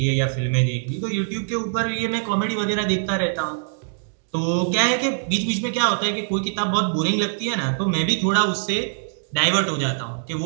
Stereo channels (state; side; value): silent; left; digital silence